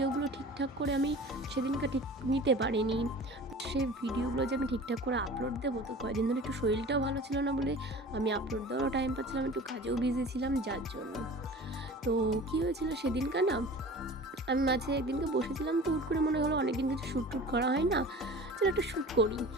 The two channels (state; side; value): normal; both; correlation 0.40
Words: ঠিকঠাক করে আমি সেদিনকার ঠিক নিতে পারিনি। সে ভিডিওগুলো যে আমি ঠিকঠাক করে আপলোড দেবো, তো কয়েকদিন ধরে একটু শরীরটাও ভালো ছিল না বলে আমি আপলোড দেওয়ারও টাইম পাচ্ছিলাম, একটু কাজেও বিজি ছিলাম যার জন্য। তো কী হয়েছিল সেদিনকার না, আমি মাঝে একদিনকে বসেছিলাম, তো হুট করে মনে হলো অনেকদিন কিছু শ্যুট টুট করা হয় না, চলো একটা শ্যুট করি।